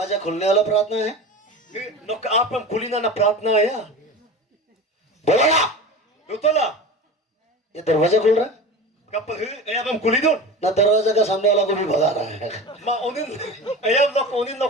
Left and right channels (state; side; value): normal; both; correlation 0.32